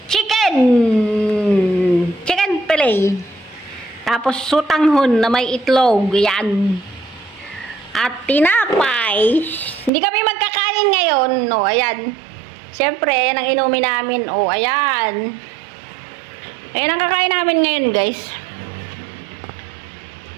chicken fillet. Tapos sutanghon na may itlog, yan. At tinapay. Hindi kami magkakain ngayon, no, ayan. Siyempre, ayan ang inumin namin, oh, ayan. Ayan ang kakain namin ngayon, guys.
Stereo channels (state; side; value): drops out; left; at 9.9 s